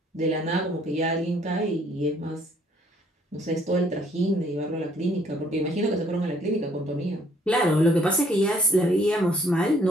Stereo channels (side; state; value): both; normal; correlation 0.63